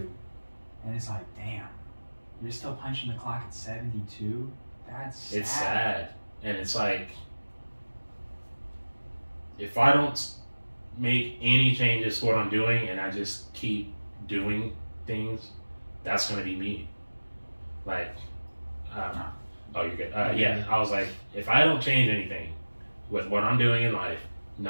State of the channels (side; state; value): both; inverted; correlation -1.00